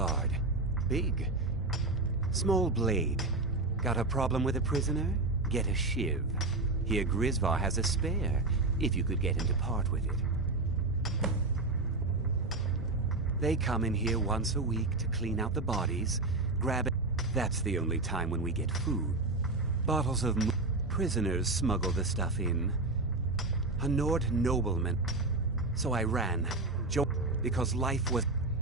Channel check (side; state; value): left; quieter; 3.2 dB